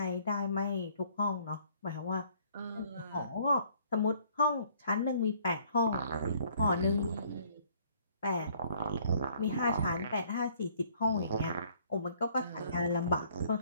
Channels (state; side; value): inverted; both; correlation -0.60